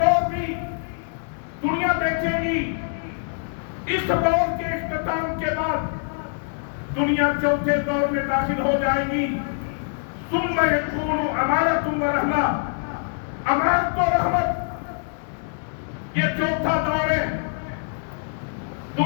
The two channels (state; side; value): silent; right; 58 dB below the other